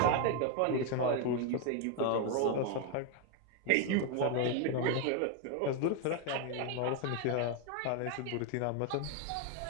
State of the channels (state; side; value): different; both; correlation 0.01